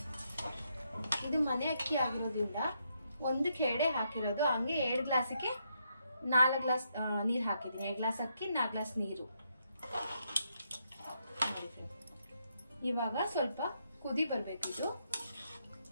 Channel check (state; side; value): inverted; both; correlation -0.77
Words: ಇದು ಮನೆ ಅಕ್ಕಿ ಆಗಿರೋದ್ರಿಂದ 1ಕ್ಕೆ 2 ಹಾಕಿರೋದು. ಹಂಗೆ 2 ಗ್ಲಾಸಿಗೆ 4 ಗ್ಲಾಸ್ ನೀರು ಹಾಕಿದ್ದೀನಿ. 2 ಗ್ಲಾಸ್ ಅಕ್ಕಿ 4 ಗ್ಲಾಸ್ ನೀರು. ಇವಾಗ ಸ್ವಲ್ಪ ಕುದಿ ಬರ್ಬೇಕಿದು.